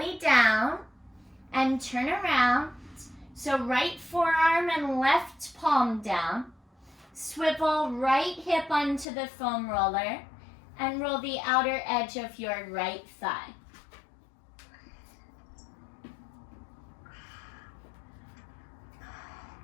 down and turn around. So right forearm and left palm down. Swivel right hip onto the foam roller and roll the outer edge of your right thigh.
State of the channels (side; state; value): right; drops out; at 9.1 s